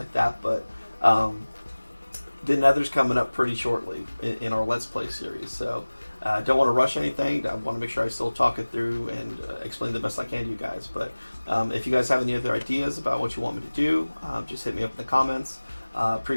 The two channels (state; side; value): inverted; both; correlation -1.00